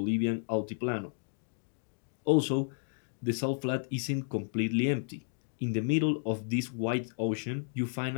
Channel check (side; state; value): right; silent; digital silence